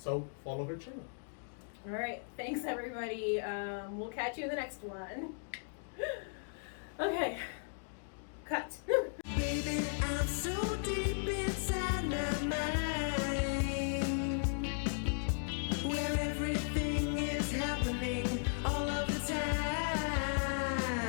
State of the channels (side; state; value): right; silent; digital silence